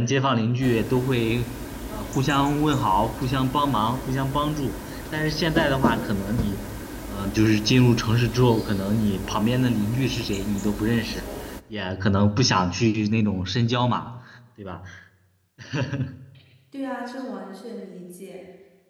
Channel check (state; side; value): identical; both; correlation 1.00